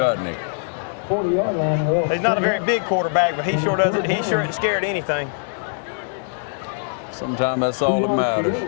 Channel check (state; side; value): silent; right; digital silence